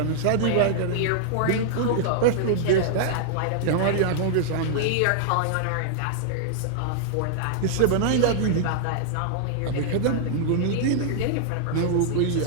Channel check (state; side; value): different; both; correlation -0.01